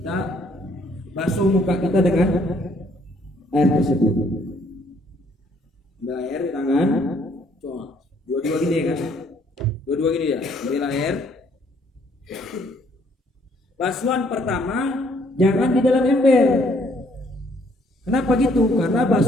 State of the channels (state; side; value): normal; both; correlation 0.65